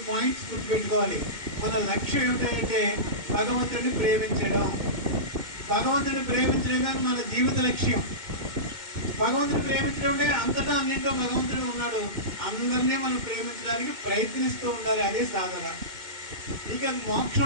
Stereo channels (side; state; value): left; late; 2.1 ms